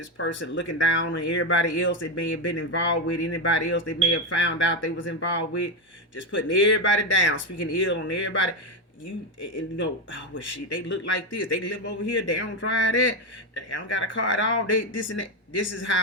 person looking down on everybody else that may have been involved with, anybody else they may have found out they was involved with, just putting everybody down, speaking ill on everybody. Well, shit, they look like this, they live over here, they don't drive that, they don't got a car at all, they this and that. This is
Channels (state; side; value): normal; both; correlation 0.10